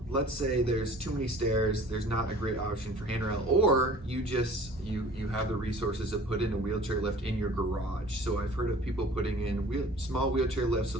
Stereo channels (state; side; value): normal; both; correlation 0.48